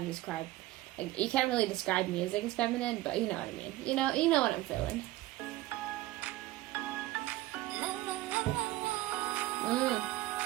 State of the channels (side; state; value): left; quieter; 16.9 dB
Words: describe, like, you can't really describe music as feminine, but you know what I mean. You know what I'm feeling.